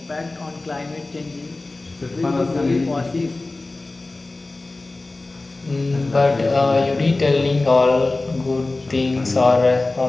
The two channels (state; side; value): quieter; right; 3.2 dB